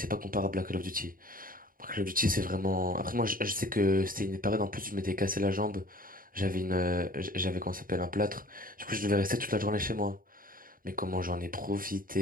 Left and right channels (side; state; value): left; late; 0.41 ms